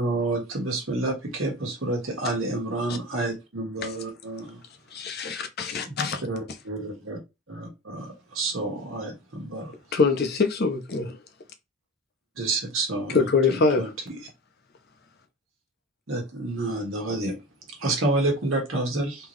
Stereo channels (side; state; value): both; normal; correlation 0.31